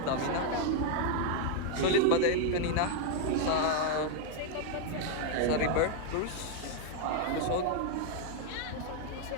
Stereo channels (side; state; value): both; different; correlation 0.01